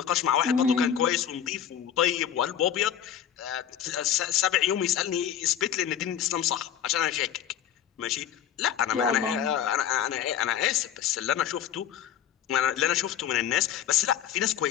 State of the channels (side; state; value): right; quieter; 9.6 dB